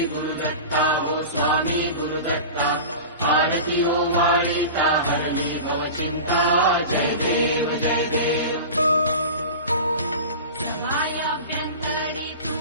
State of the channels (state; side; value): inverted; both; correlation -0.32